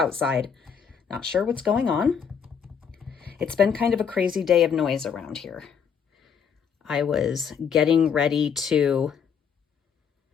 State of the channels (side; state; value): right; quieter; 7.0 dB